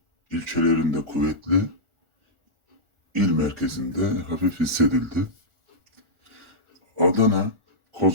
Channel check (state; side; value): late; left; 1.4 ms